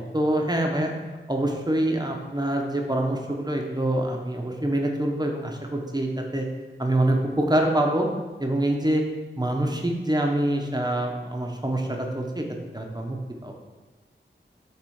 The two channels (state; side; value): normal; both; correlation 0.80